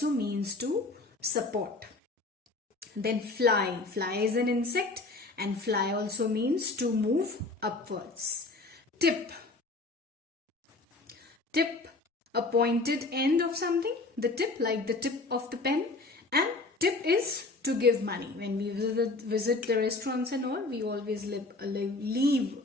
means to support. Then fly. Fly is an insect and fly also means to move upwards. Tip. Tip, a pointed end of something. The tip, like the tip of the pen. And tip is to give money. When we visit the restaurants and all, we always leave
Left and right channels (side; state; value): right; quieter; 3.3 dB